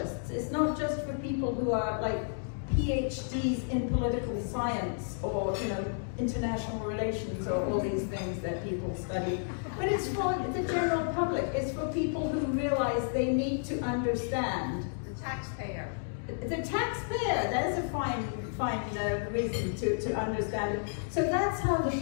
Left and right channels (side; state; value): right; silent; digital silence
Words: It's not just for people who are like PhDs in political science or, international relations or all these things that people study. But it's for the general public. It's for people who realize they need to understand. The taxpayer. The taxpayer, that is a fine reason to understand it. So that's how the